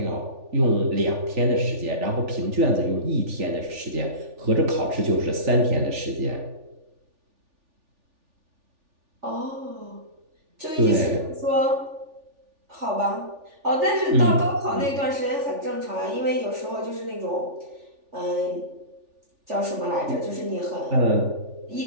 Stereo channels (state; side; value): late; left; 3.4 ms